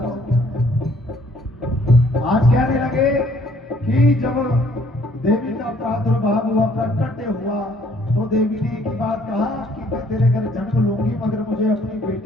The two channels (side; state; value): both; normal; correlation 0.62